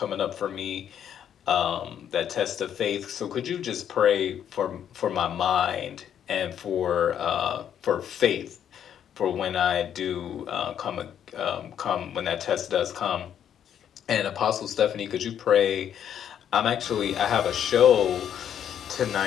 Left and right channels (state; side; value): quieter; right; 9.4 dB